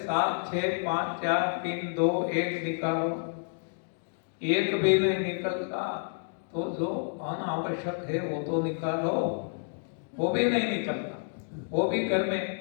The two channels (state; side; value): silent; right; digital silence